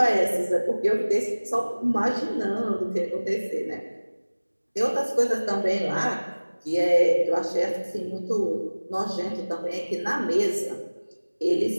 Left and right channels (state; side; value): inverted; both; correlation -1.00